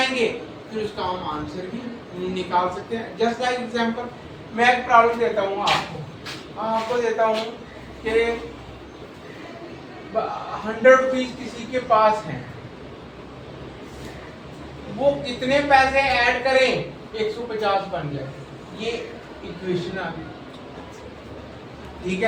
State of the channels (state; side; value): identical; both; correlation 1.00